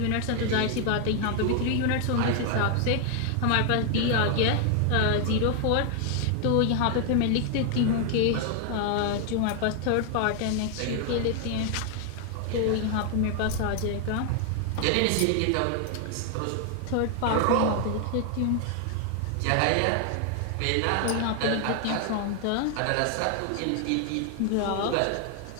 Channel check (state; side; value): different; both; correlation 0.00